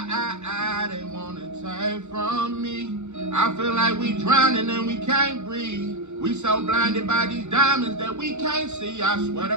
they wanna take from me? I feel like we drowning and we can't breathe. We so blinded by these diamonds that we can't see. I swear to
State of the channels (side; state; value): left; late; 0.83 ms